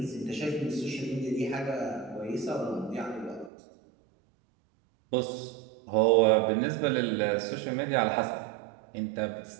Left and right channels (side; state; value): left; drops out; at 3.5 s